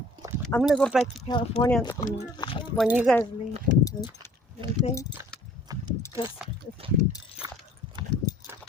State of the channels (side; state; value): both; normal; correlation 0.53